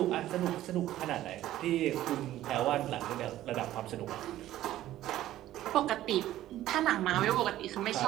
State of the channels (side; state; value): left; quieter; 13.9 dB